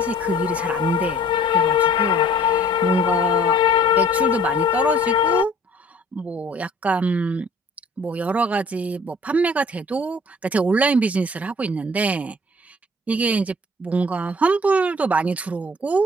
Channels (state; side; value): normal; both; correlation 0.52